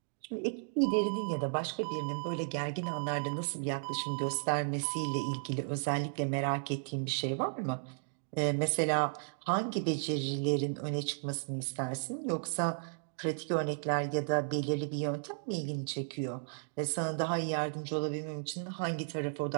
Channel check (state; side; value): silent; left; digital silence